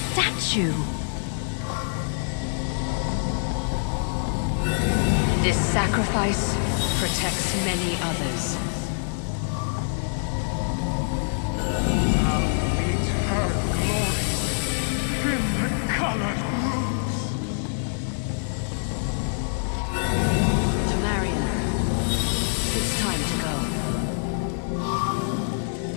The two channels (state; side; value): silent; right; digital silence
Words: This sacrifice protects many others. Tamriel, it's time to go.